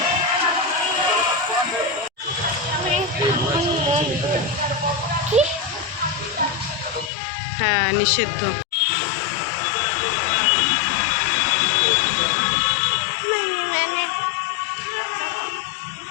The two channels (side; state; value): right; drops out; at 7.1 s